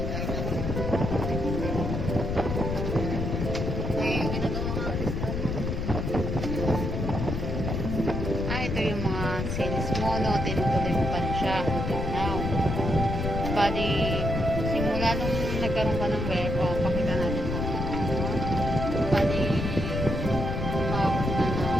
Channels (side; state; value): left; noise; rumble, 2 dB below the sound